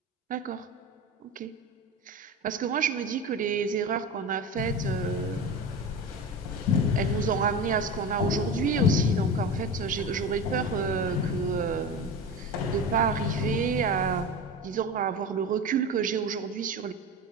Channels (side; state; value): both; normal; correlation 0.27